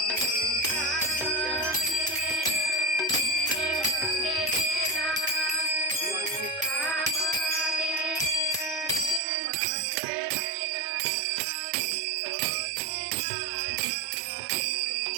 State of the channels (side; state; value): left; drops out; at 9.2 s